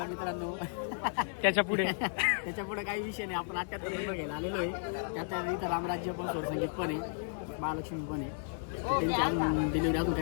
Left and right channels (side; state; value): right; silent; digital silence